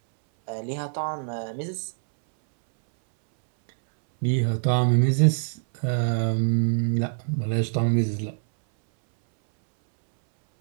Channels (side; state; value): left; silent; 62 dB below the other